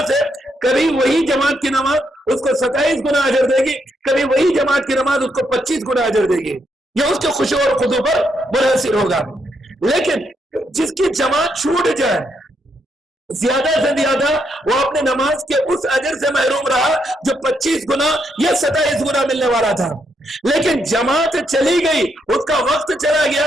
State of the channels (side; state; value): both; normal; correlation 0.78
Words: سے کبھی وہی جماعت کی نماز اس کو 27 گنا اجر دے گی، کبھی وہی جماعت کی نماز اس کو 25 گنا اجر دے گی، یہ اس کے خشوع اور خضوع پر منحصر ہوگا۔ لیکن جس کی جماعت چھوٹ جائے، زیادہ سے زیادہ وہ اپنے نماز کے اس اجر سے محروم رہا جو 25 گنا یا 27 گنا ملنے والا تھا۔ لیکن جماعت چلی گئی، اس کا وقت چلا گیا،